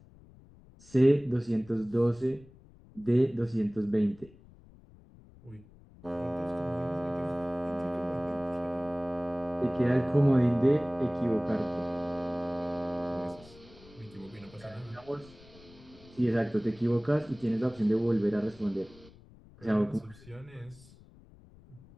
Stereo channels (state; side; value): noise; left; rumble, 23 dB below the sound